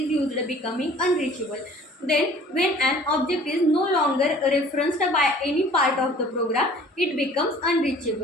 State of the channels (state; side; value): normal; both; correlation 0.50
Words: used, becoming unreachable. Then when an object is no longer referenced by any part of the program, it becomes